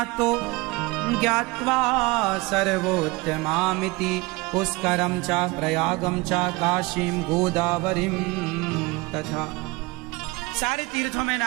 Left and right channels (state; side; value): quieter; left; 23.3 dB